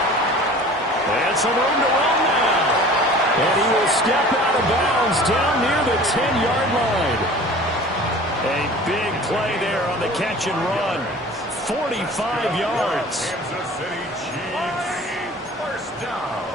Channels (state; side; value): normal; both; correlation 0.44